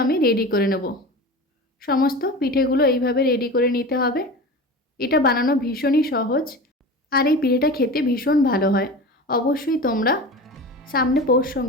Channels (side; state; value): both; normal; correlation 0.32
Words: আমি রেডি করে নেব। সমস্ত পিঠেগুলো এইভাবে রেডি করে নিতে হবে। এটা বানানো ভীষণই সহজ, আর এই পিঠেটা খেতে ভীষণ ভালো হয়। অবশ্যই তোমরা সামনে পৌষ